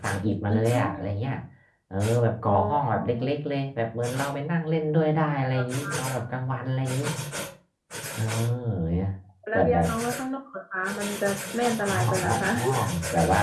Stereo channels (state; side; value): identical; both; correlation 1.00